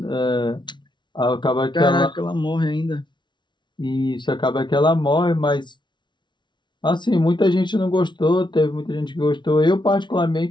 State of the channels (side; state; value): right; late; 0.22 ms